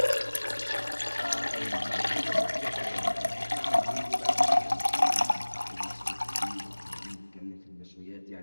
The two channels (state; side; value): inverted; both; correlation -1.00